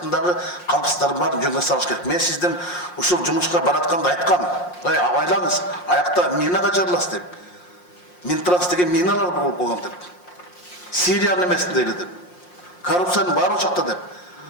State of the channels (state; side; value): late; right; 5.6 ms